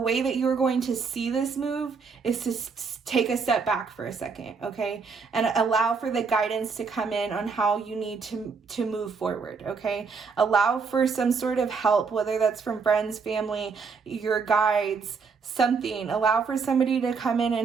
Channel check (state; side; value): quieter; left; 5.2 dB